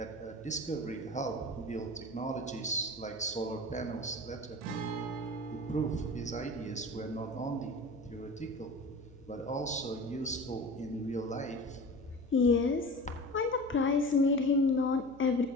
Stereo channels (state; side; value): noise; left; hum, 22 dB below the sound